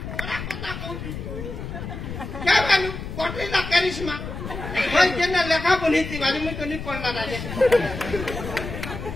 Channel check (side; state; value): left; noise; rumble, 8 dB below the sound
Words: क्या मालूम कोटली ना करिश्मा भाई जेना लेखा बनी थी वाली में तो नहीं पढ़ना राजे